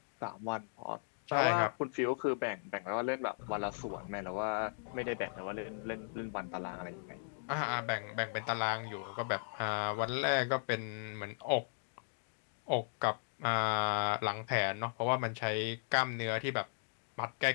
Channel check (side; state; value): right; silent; digital silence